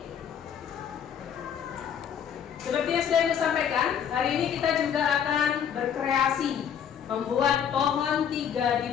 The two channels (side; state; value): right; quieter; 8.4 dB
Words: Seperti yang sudah Ibu sampaikan, hari ini kita juga akan berkreasi, membuat pohon 3